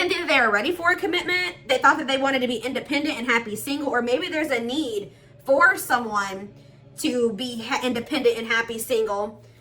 think that they were ready for a commitment. They thought that they wanted to be independent and happy single, or maybe there's a need for someone to be independent and happy single,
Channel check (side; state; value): both; identical; correlation 1.00